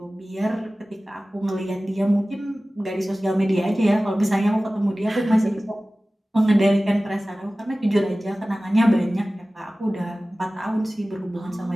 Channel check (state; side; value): normal; both; correlation 0.97